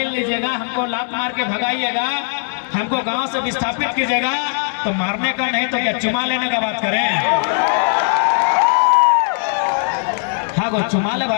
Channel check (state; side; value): silent; right; digital silence